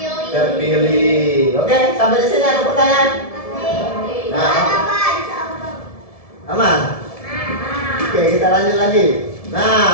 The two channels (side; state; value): right; late; 1.7 ms